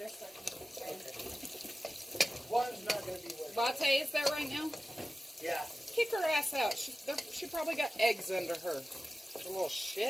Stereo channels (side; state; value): both; normal; correlation 0.95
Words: so I can Okay. One's not going to be working. Latte is there right now? Yeah. Kick her ass out. She probably got eggs under her. The little